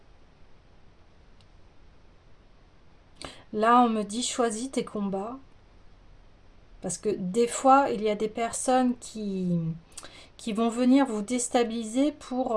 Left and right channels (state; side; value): identical; both; correlation 1.00